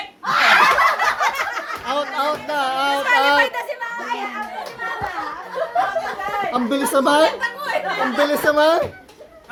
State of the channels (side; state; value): both; identical; correlation 1.00